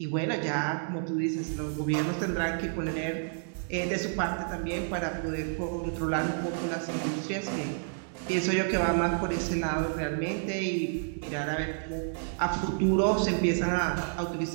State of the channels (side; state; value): left; silent; digital silence